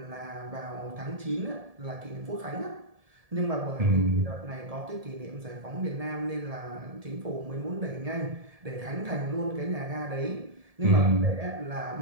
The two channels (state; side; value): late; left; 1.7 ms